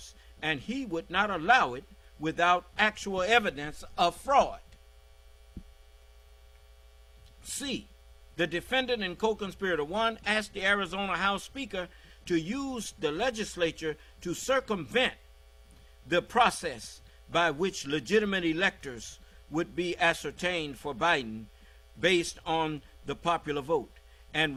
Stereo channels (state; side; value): identical; both; correlation 1.00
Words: and he would not allow it without actual evidence of fraud. C. The defendant and co-conspirator 1 asked the Arizona House Speaker to use the legislature to circumvent the process by which legitimate electors would be ascertained for Biden based on the popular vote, and